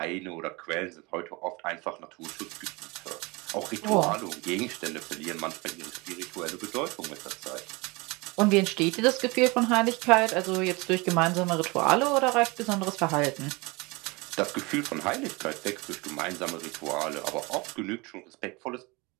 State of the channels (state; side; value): quieter; left; 25.7 dB